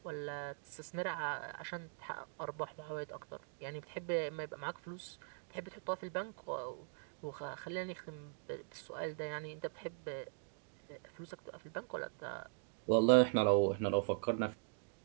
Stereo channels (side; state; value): left; silent; digital silence